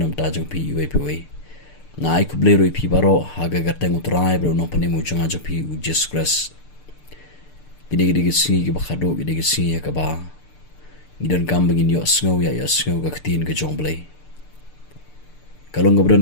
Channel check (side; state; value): right; late; 6.7 ms